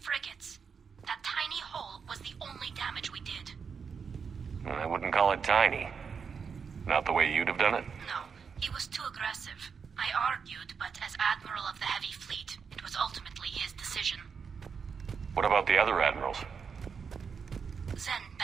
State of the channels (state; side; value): quieter; left; 6.1 dB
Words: frigates. That tiny hole was the only damage we did. I wouldn't call it tiny. Not the way you'd have done it? No, he was too aggressive. I argued, but as Admiral of the Heavy Fleet, it was ultimately his decision. What about the other admirals? Zen